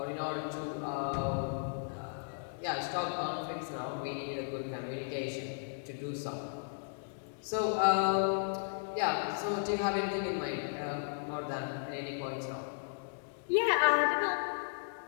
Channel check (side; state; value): right; silent; digital silence